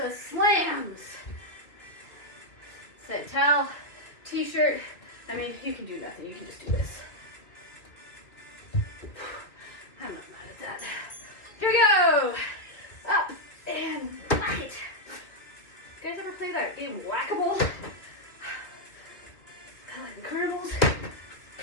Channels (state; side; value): late; right; 2.6 ms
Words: slams. Set towel, t-shirt. I mean, you can do nothing. You can just do this. I'm not mad at that. Here we go. kind of game of whack-a-mole. Kind of like the carnivals.